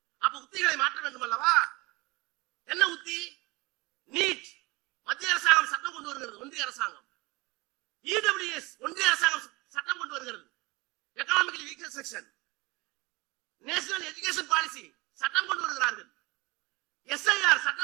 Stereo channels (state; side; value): quieter; left; 23.9 dB